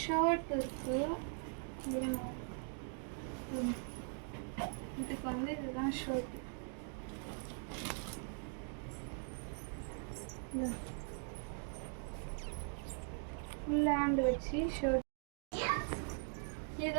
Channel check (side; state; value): left; silent; 50 dB below the other